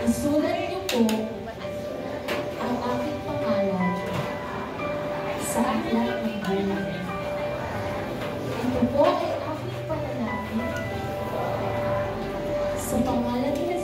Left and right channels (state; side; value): identical; both; correlation 1.00